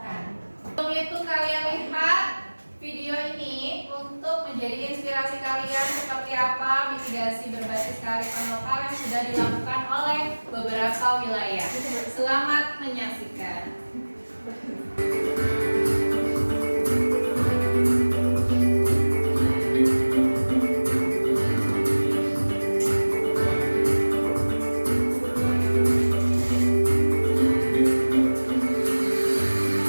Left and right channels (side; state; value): both; inverted; correlation -1.00